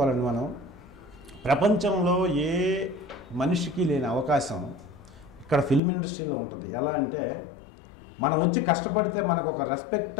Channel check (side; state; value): right; drops out; at 5.8 s